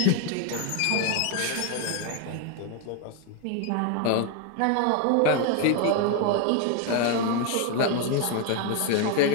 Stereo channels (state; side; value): different; both; correlation 0.01